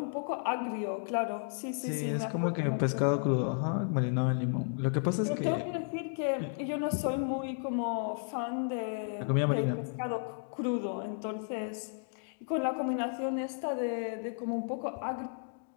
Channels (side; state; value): right; silent; digital silence